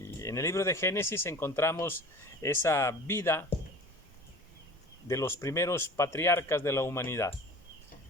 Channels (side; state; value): both; normal; correlation 0.41